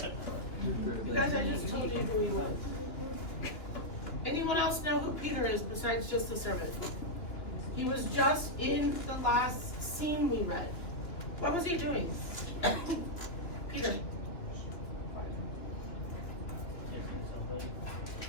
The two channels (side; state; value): right; late; 2.9 ms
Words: You guys, I just told you who he was. Anyone else know who Peter is besides just the servant? He was just in the last scene we read. What was he doing? Peter.